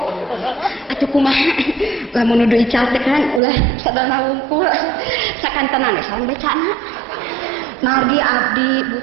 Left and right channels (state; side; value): drops out; left; at 3.4 s